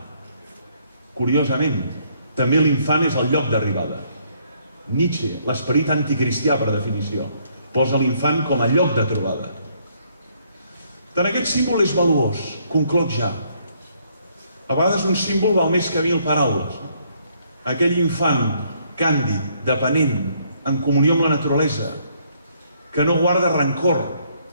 Curiosament, també l'infant és el lloc d'arribada. Nietzsche, l'esperit anticristià per definició, posa l'infant com a lloc de trobada. Tant aquest símbol és valuós, concloc ja. A vegades un símbol val més que 1000 paraules. Aquell infant càndid, dependent, en comunió amb la naturalesa, que no guarda rancor,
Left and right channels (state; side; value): inverted; both; correlation -0.68